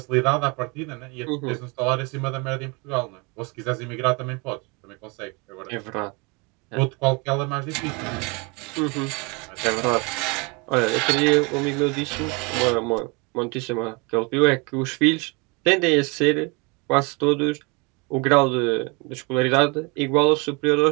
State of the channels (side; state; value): left; quieter; 29.3 dB